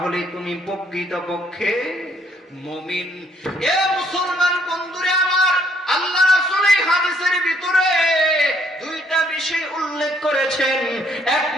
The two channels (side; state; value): both; normal; correlation 0.67